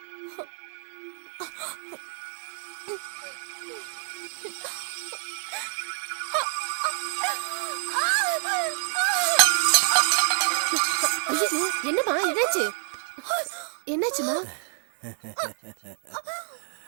ஐயோ, என்னம்மா என்னாச்சு? என்னாச்சுமா?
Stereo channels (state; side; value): silent; left; digital silence